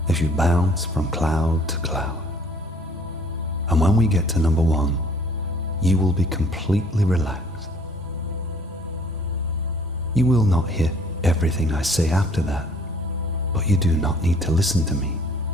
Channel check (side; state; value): both; normal; correlation 0.57